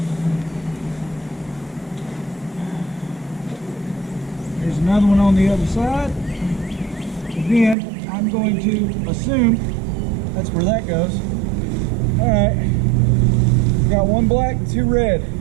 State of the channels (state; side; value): drops out; left; at 7.8 s